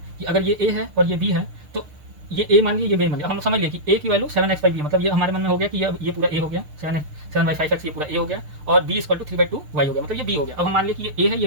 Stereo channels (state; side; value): late; left; 6.6 ms